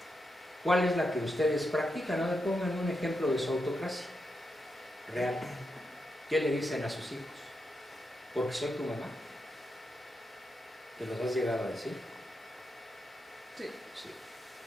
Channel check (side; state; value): both; normal; correlation 0.85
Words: ¿Cuál es la que ustedes practican? A ver, pongan un ejemplo de su autocracia real. ¿Qué le dicen a sus hijos? Porque soy tu mamá. ¿Te los has llegado a decir? Sí. Sí.